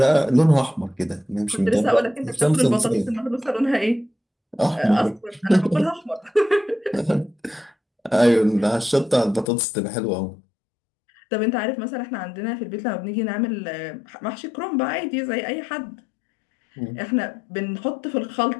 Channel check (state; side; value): drops out; right; at 9.5 s